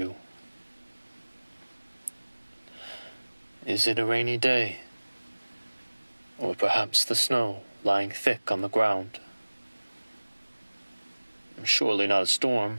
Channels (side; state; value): both; inverted; correlation -1.00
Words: Is it a rainy day? Or perhaps the snow lying thick on the ground? Surely not a